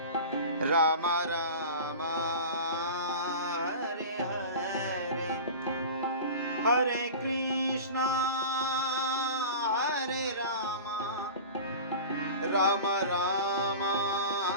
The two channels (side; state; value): both; inverted; correlation -0.33